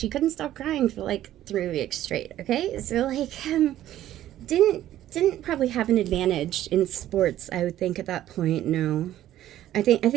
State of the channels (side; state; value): left; quieter; 12.9 dB